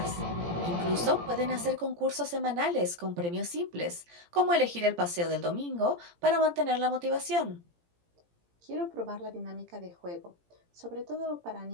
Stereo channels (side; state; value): left; late; 17 ms